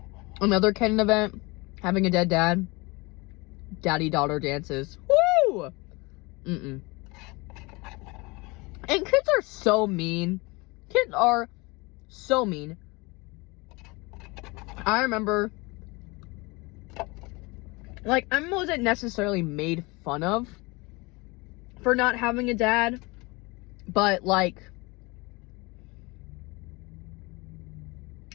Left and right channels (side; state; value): right; quieter; 25.3 dB